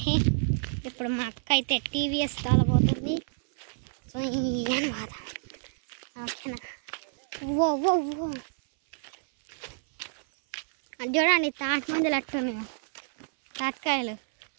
ఇప్పుడు మా అక్క అయితే టీవీఎస్ తోలబోతుంది. సో అనమాట ఓకేనా. ఓ ఓ ఓ అది చూడండి, తాటి మందులు అట్టున్నాయి, తాటికాయలు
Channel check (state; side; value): silent; left; 57 dB below the other